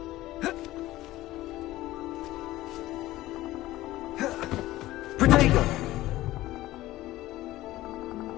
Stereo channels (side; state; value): right; quieter; 16.5 dB